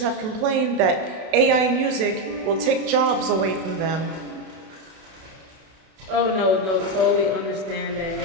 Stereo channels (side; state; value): left; late; 32 ms